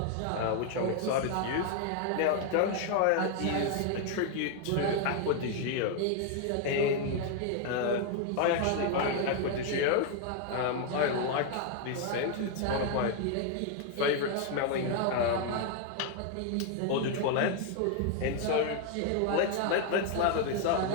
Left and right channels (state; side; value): different; both; correlation 0.00